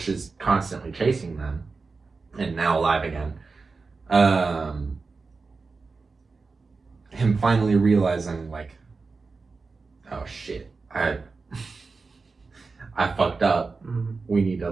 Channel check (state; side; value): quieter; left; 4.3 dB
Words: is constantly chasing them, and now alive again. Him finally realizing like, oh shit, I fucked up. We need to